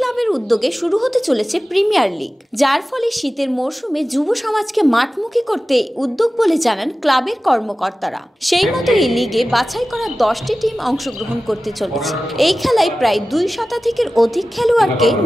উদ্যোগে শুরু হতে চলেছে প্রিমিয়ার লিগ, যার ফলে শীতের মরশুমে যুব সমাজকে মাঠমুখী করতে উদ্যোগ বলে জানান ক্লাবের কর্মকর্তারা। সেই মতো এই লিগে বাছাই করা 10টি টিম অংশগ্রহণ করতে চলেছে। এই খেলায় প্রায় 2 শতাধিকের অধিক খেলোয়াড়কে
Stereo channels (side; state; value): both; normal; correlation 0.96